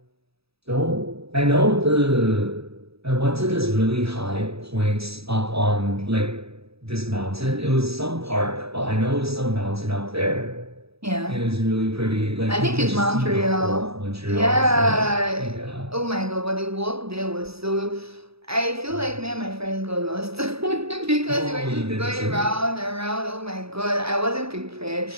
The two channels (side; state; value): left; late; 0.77 ms